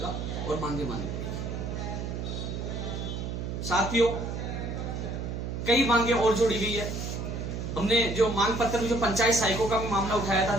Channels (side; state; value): right; noise; hum, 4 dB below the sound